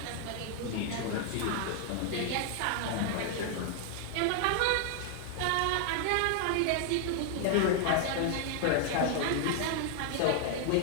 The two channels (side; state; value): both; different; correlation 0.00